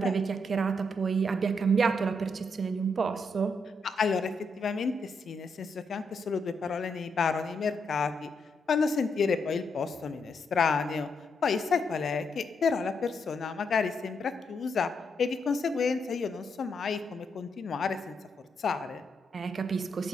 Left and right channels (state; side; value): normal; both; correlation 0.79